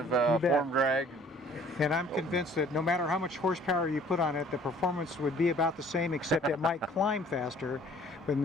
form drag. And I'm convinced that no matter how much horsepower you put on it, the performance would be about the same, except it might climb faster, but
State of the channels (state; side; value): normal; both; correlation 0.55